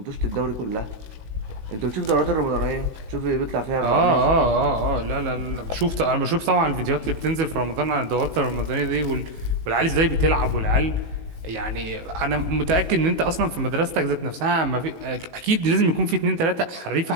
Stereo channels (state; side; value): late; left; 19 ms